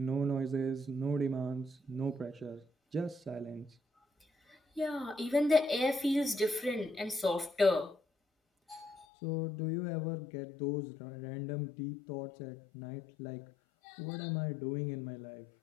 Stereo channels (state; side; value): drops out; right; at 9.1 s